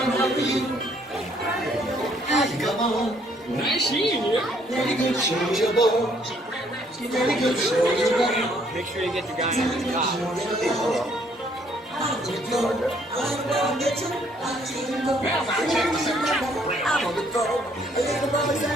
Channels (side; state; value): both; normal; correlation 0.65